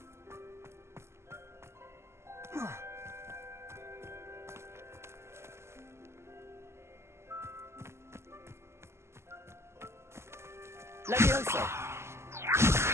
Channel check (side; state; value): left; late; 0.13 ms